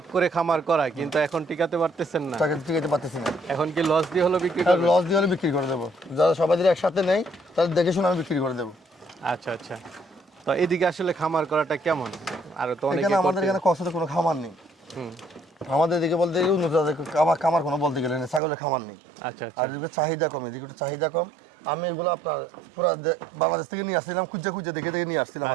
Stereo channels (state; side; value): drops out; left; at 18.4 s